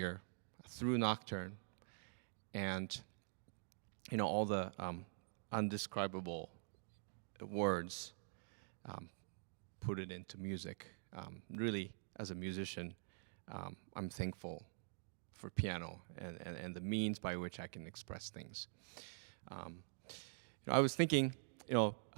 through Nocturne, and all the undescribable words, put it into music. Really, as a musician, I'm thankful for piano and the means by which I can express things. I was thinking,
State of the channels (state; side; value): silent; left; digital silence